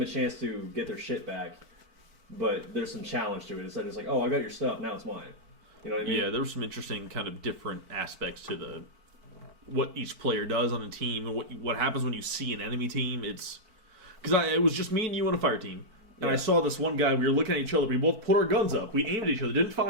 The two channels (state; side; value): late; left; 4.5 ms